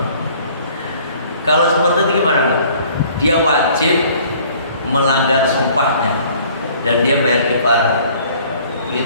Kalau seperti itu gimana? Dia wajib melanggar sumpahnya dan dia bayar kifarat.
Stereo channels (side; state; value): both; inverted; correlation -0.55